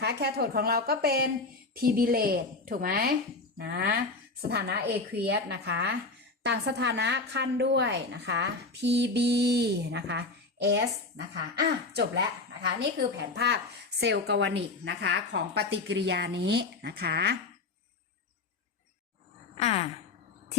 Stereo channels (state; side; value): quieter; right; 3.5 dB